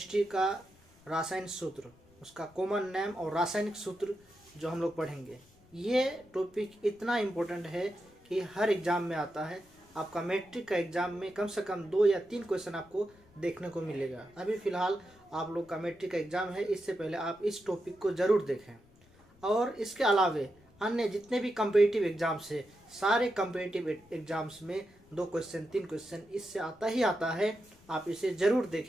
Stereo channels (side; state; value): left; noise; rumble, 28 dB below the sound